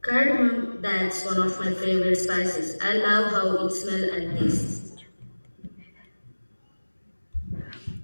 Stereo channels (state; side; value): inverted; both; correlation -1.00